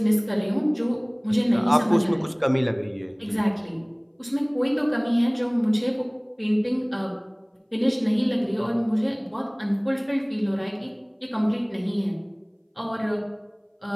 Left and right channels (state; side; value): identical; both; correlation 1.00